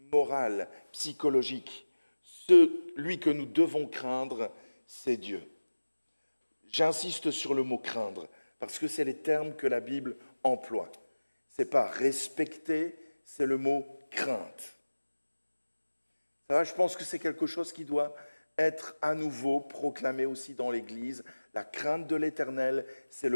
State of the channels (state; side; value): inverted; both; correlation -1.00